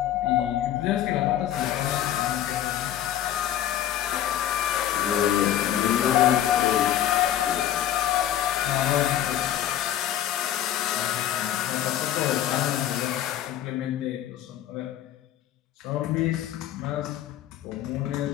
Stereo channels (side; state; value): right; quieter; 11.5 dB